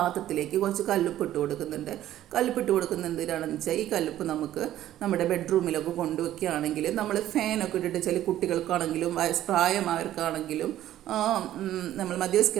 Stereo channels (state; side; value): quieter; left; 12.9 dB